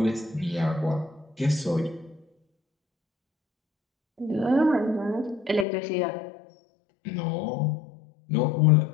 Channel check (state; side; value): drops out; right; at 5.7 s